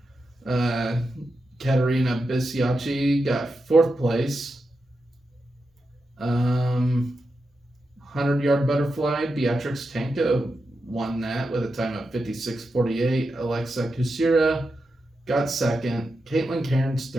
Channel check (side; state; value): both; normal; correlation 0.88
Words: Katerina Bisiacci got 4th place. 100-yard butterfly, Beatrix Tanko won that with a time of 56:48. Alexa Kusira got 2nd. Caitlin Cairns